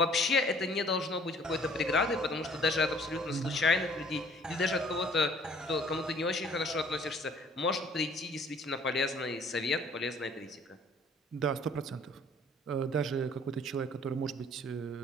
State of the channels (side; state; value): both; normal; correlation 0.56